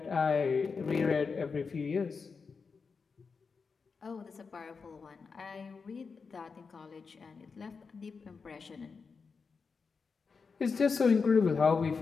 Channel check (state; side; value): quieter; right; 5.1 dB